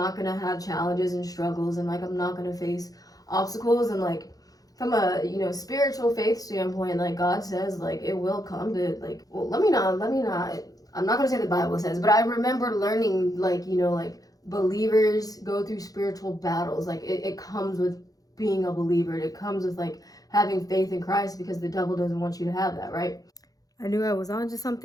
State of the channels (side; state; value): right; late; 0.18 ms